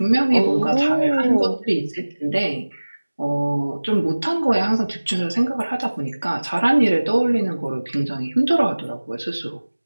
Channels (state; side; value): inverted; both; correlation -1.00